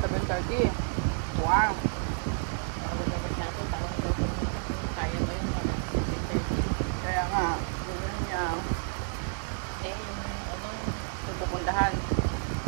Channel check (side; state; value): left; silent; 58 dB below the other